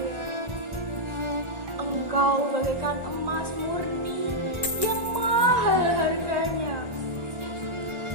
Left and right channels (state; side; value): late; left; 1.4 ms